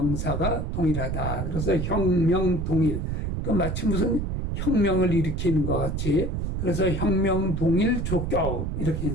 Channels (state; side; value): noise; right; rumble, 2 dB below the sound